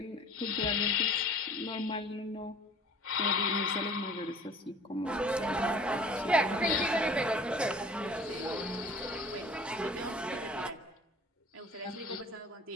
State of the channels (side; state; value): both; normal; correlation 0.48